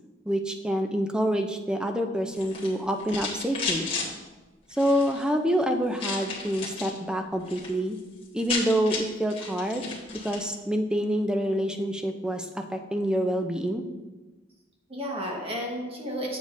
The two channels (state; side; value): normal; both; correlation 0.73